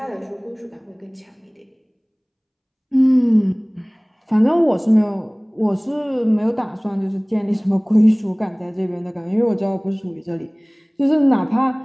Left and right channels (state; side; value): identical; both; correlation 1.00